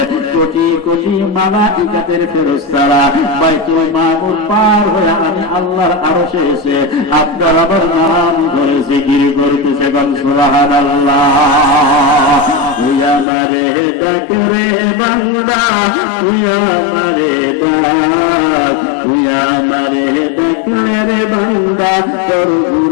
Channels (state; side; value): drops out; right; at 13.2 s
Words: কোটি কোটি মালাইকাতের ফেরেশতারা বাইতুল মামুর পার হয়ে আমি আল্লাহর আরশে এসে আপনার আমার নাম ধরে জিকির করতেছে। সুবহানাল্লাহ। তুই আমারে ডাক রে বান্দা, তুই আমারে ডাক, তুই আমারে ডাক রে বান্দা, তোর